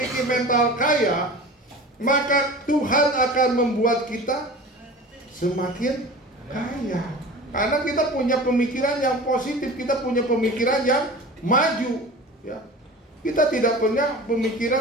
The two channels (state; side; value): normal; both; correlation 0.36